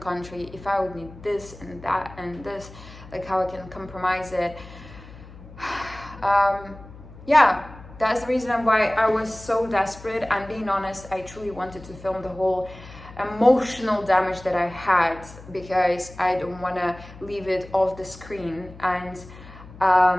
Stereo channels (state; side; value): noise; left; hum, 18 dB below the sound